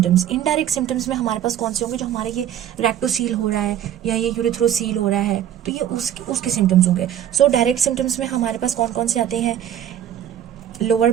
इनडायरेक्ट सिम्टम्स में हमारे पास कौन से होंगे, जो हमारे ये रेक्टोसील हो रहा है या ये यूरिथ्रोसील हो रहा है, तो ये उसके सिम्टम्स होंगे। सो डायरेक्ट सिम्टम्स में हमारे पास कौन कौन से आते हैं, lower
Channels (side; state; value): left; quieter; 10.6 dB